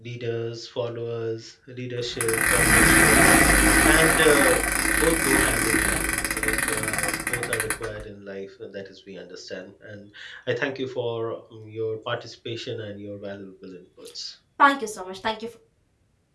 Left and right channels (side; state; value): both; identical; correlation 1.00